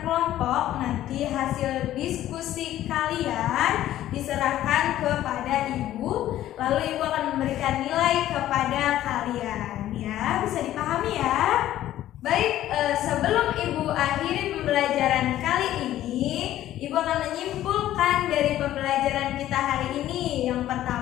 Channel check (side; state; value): right; quieter; 13.2 dB